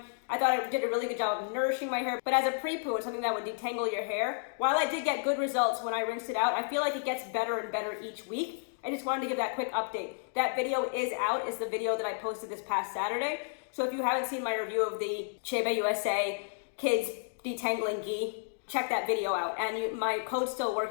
I thought it did a really good job of nourishing my hair, but as a pre-poo and something that would detangle your hair, while I did get good results when I rinsed it out, I feel like it gets better and better each week. I just wanted to give that quick update. That video is out. It's the video that I posted this past Saturday. So if you haven't seen my review of the Shampoo USA Kids Detangling Ghee, check that video out. And my code still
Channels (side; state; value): right; silent; digital silence